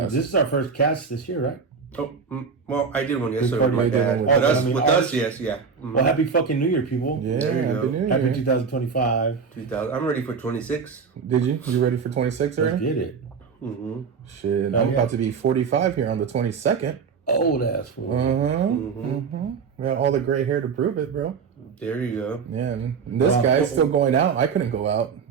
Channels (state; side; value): quieter; left; 5.8 dB